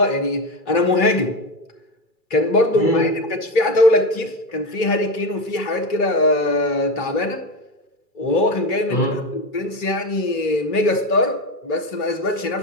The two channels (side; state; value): right; late; 2.3 ms